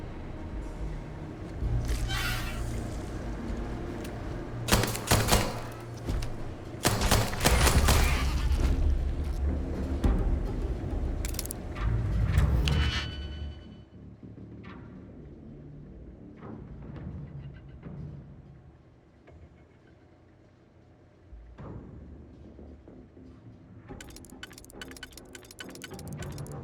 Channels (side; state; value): both; identical; correlation 1.00